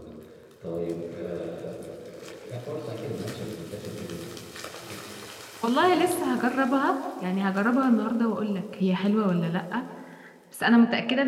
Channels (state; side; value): identical; both; correlation 1.00